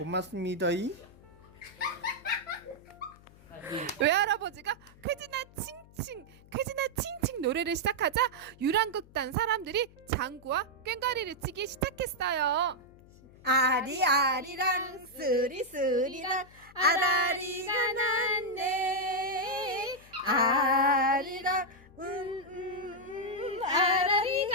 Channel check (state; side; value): noise; left; hum, 24 dB below the sound